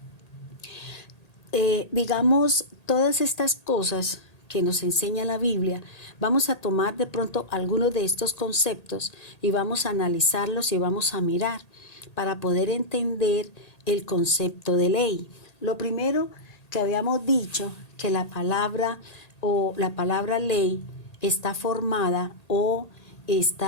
Digamos, todas estas cosas que nos enseña la Biblia, vamos a tomar de pronto algunos de estos conceptos y vamos a analizarlos y vamos a mirar para poder entender el concepto de ley. Lo primero que habíamos dicho, que la palabra ley está formada o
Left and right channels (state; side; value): late; right; 1.8 ms